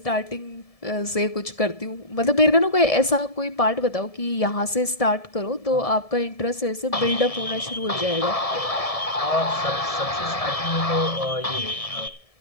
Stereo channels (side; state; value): right; late; 1.7 ms